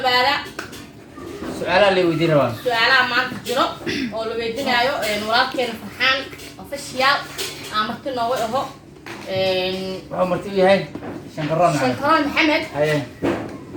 بالا سؤال اللي ودي روان سؤال ما تجرب أو لو يدينا أيو نورات فرحان أوفيشيال عمرتنا وهو عمرتي هاي شنكران محمد هاي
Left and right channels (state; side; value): identical; both; correlation 1.00